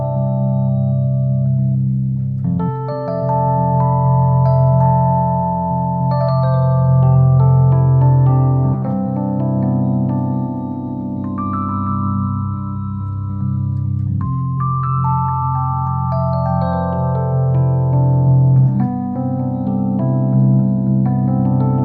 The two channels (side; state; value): both; identical; correlation 1.00